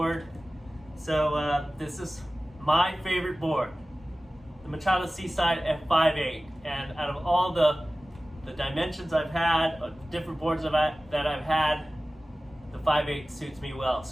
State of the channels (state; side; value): normal; both; correlation 0.97